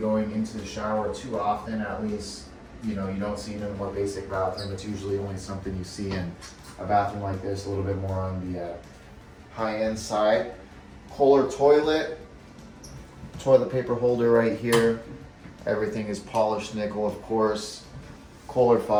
into the shower too often, at least, you know, you don't see it in a more basic bathroom. It's usually only something you see in a bathroom like this, a little bit more on the high-end side. Kohler toilet paper holder right here. Everything is polished nickel, of course. Kohler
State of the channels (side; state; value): both; identical; correlation 1.00